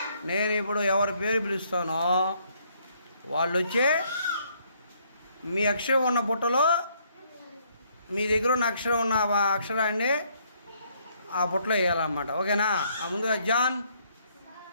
నేను ఇప్పుడు ఎవరి పేరు పిలుస్తానో వాళ్ళు వచ్చి మీ అక్షరం ఉన్న బుట్టలో మీ దగ్గర ఉన్న అక్షరం ఉన్న అక్షరాన్ని ఆ బుట్టలో వేయాలన్నమాట. ఓకేనా? ముందుగా జాన్,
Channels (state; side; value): inverted; both; correlation -0.68